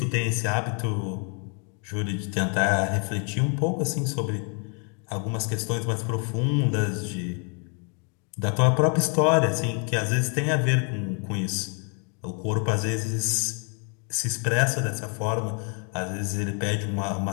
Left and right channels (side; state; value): right; quieter; 39.4 dB